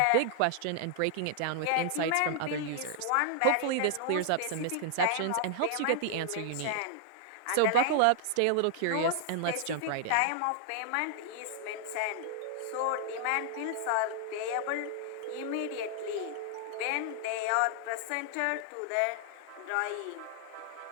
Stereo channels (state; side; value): different; both; correlation 0.00